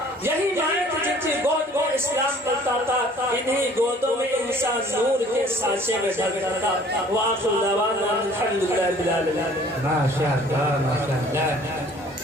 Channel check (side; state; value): both; normal; correlation 0.54